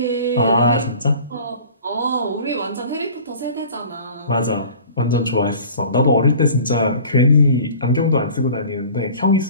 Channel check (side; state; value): both; inverted; correlation -0.44